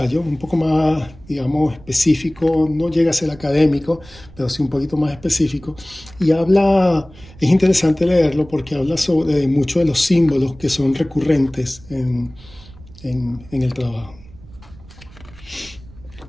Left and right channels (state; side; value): noise; right; rumble, 21 dB below the sound